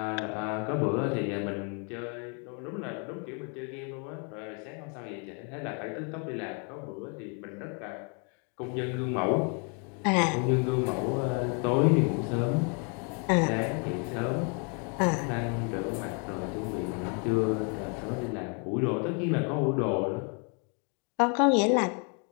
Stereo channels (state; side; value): quieter; right; 37.5 dB